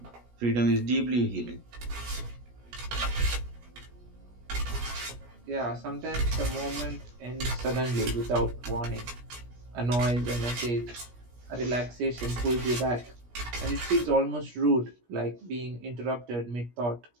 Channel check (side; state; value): left; late; 17 ms